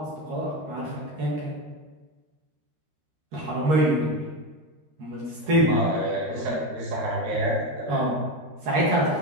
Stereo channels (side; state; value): left; late; 13 ms